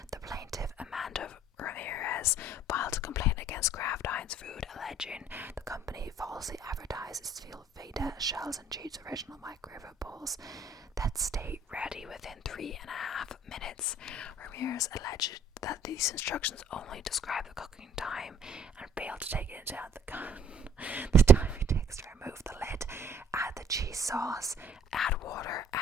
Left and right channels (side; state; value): both; normal; correlation 0.58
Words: the plaintiff Amanda Ramirez filed a complaint against Kraft Heinz Food, alleging the company falsely advertised its Velveeta shells and cheats original microwave bowls that stay ready within 3.5 minutes. Ramirez alleged that these instructions only describe the cooking time and failed to take into account the time it takes to remove the lid, add the cheese sauce, add water,